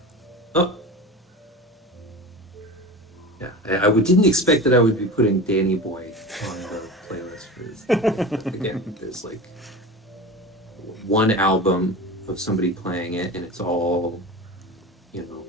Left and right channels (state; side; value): normal; both; correlation 0.30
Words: Yeah, I didn't expect that I would be putting Danny Boy on the playlist for this. Again, there's like one album of somebody playing it, and it's all,